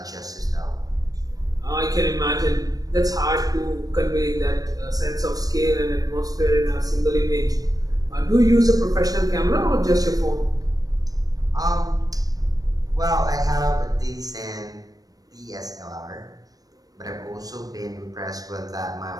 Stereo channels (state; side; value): late; left; 0.18 ms